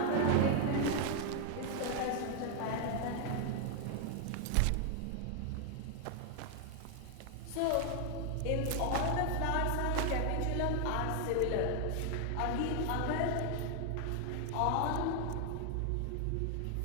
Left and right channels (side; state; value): both; different; correlation 0.00